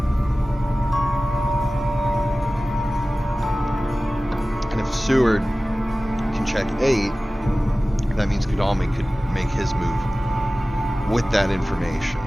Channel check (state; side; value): normal; both; correlation 0.97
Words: And if Seward can check 8, that means Godalming could make his move with that information.